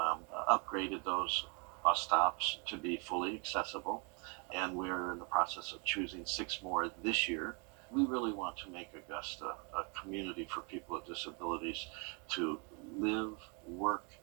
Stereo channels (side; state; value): left; quieter; 34.8 dB